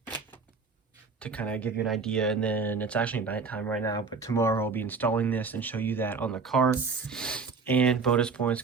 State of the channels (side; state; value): left; quieter; 4.8 dB